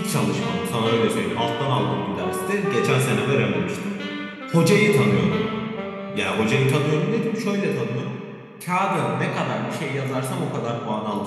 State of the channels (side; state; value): both; identical; correlation 1.00